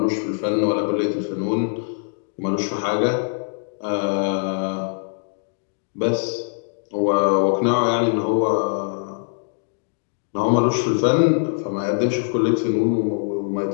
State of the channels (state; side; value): silent; right; digital silence